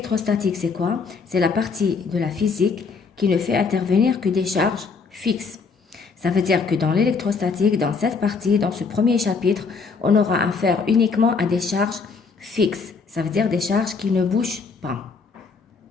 c'est quoi? C'est la partie de la physique qui ne fait intervenir que des charges fixes. Ça veut dire que dans l'électrostatique, dans cette partie, dans ce premier chapitre, on aura affaire uniquement à des charges fixes. Ça veut dire des charges qui ne bougent pas.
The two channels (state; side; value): quieter; right; 4.9 dB